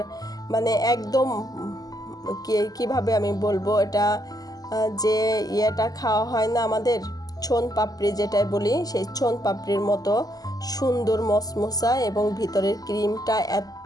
মানে একদম কিভাবে আমি বলবো, এটা যে ইয়েটা খাওয়া হয় না আমাদের ছোন পাপড়ি যেটাই বলি, সেই ছোন পাপড়ির মতো সুন্দর মসমসা, এবং ভিতরের ক্রিমটা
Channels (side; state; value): right; late; 0.18 ms